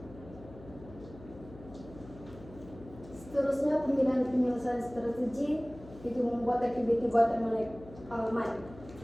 Seterusnya, pemilihan penyelesaian strategi itu membuat aktiviti buatan manik.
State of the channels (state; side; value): noise; left; hum, 18 dB below the sound